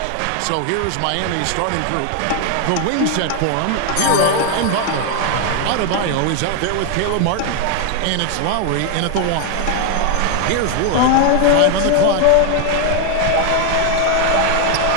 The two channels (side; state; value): both; different; correlation 0.01